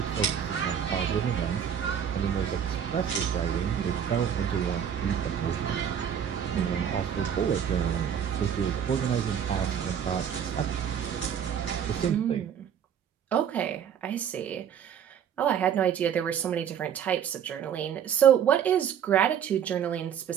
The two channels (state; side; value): quieter; left; 8.6 dB